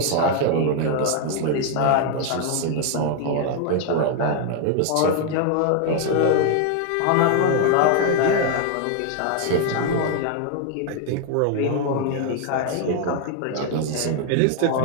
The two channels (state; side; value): different; both; correlation 0.01